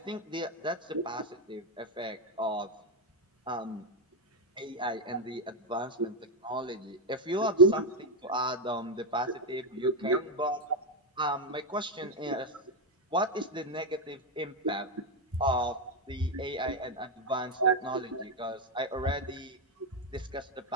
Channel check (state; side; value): normal; both; correlation 0.05